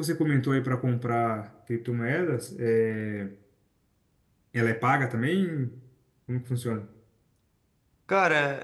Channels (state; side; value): identical; both; correlation 1.00